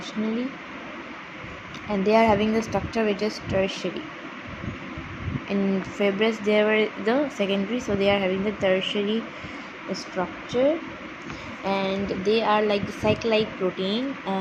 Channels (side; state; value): both; identical; correlation 1.00